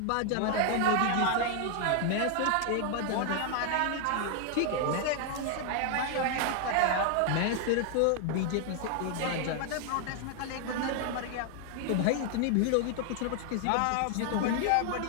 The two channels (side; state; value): both; different; correlation 0.00